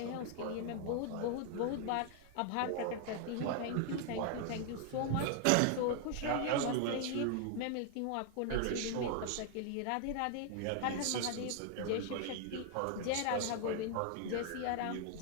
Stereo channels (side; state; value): both; different; correlation 0.00